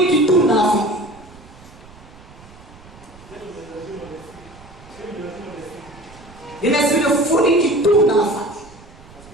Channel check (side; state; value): right; noise; rumble, 22 dB below the sound